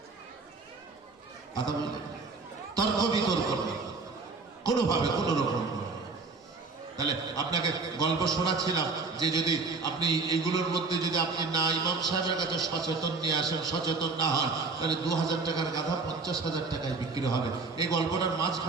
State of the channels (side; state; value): left; quieter; 4.0 dB